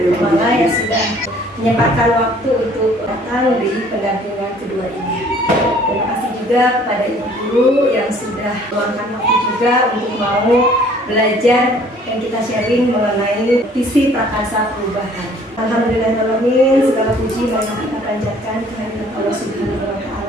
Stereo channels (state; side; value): normal; both; correlation 0.56